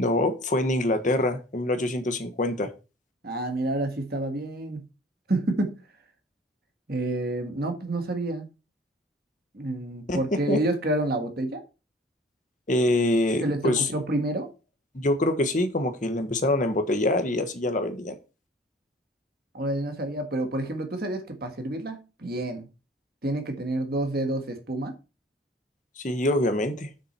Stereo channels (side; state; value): both; normal; correlation 0.48